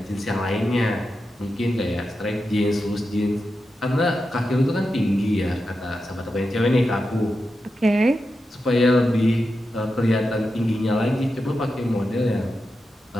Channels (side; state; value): both; normal; correlation 0.89